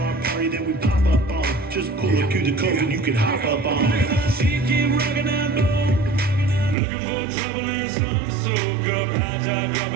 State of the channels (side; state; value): left; drops out; at 6.8 s